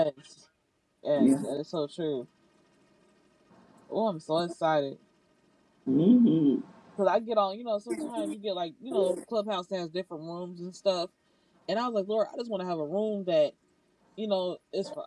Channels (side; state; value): both; identical; correlation 1.00